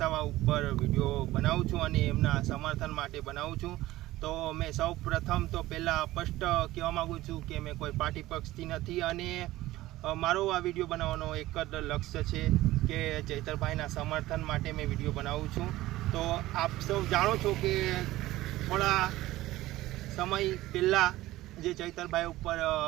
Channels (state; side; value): quieter; left; 16.8 dB